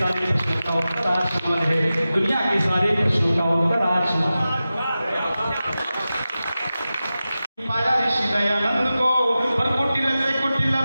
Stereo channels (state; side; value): inverted; both; correlation -0.94